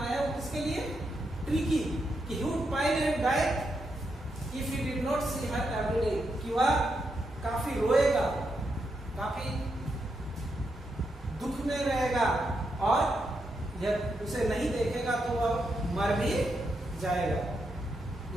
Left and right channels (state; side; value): normal; both; correlation 0.83